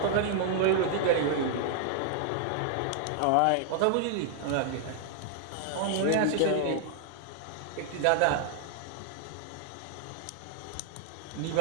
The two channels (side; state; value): both; different; correlation -0.01